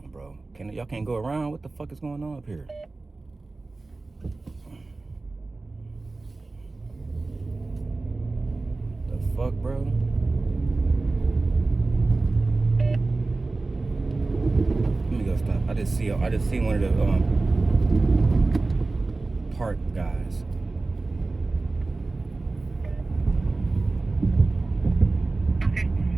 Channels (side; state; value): left; quieter; 3.4 dB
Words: bro. Y'all can't go around? What the fuck is going on up here? The fuck, bro? Let me go stop. I just see one of the park guys. Okay.